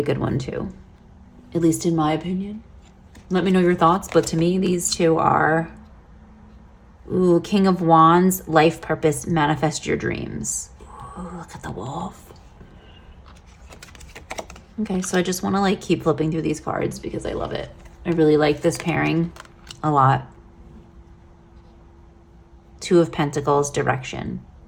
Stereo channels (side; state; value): both; identical; correlation 1.00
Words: good one too, at least in my opinion. Let me know your thoughts. But to me, these two are, ooh, King of Wands, life purpose, manifest your dreams. Ooh, look at the wolf. Okay, so I just want to like keep flipping through these cards because I love it. I really like this pairing a lot. Two of Pentacles, direction.